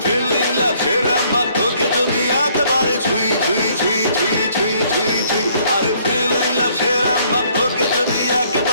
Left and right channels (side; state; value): both; inverted; correlation -0.64